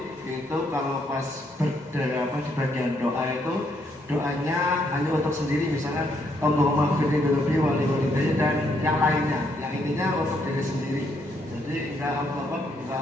itu kalau pas di bagian doa itu doanya hanya untuk sendiri, misalnya Allahumma firli dhunubi wali walidayya dan yang lainnya, yang intinya untuk diri sendiri. Jadi enggak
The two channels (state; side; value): normal; both; correlation 0.73